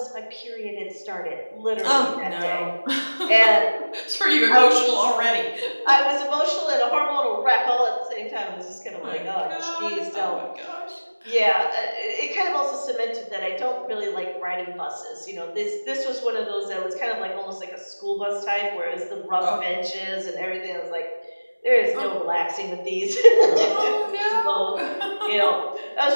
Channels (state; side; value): inverted; both; correlation -1.00